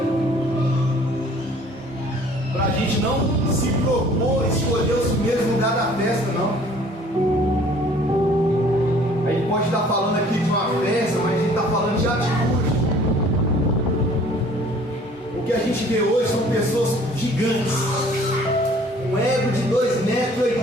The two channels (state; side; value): normal; both; correlation 0.54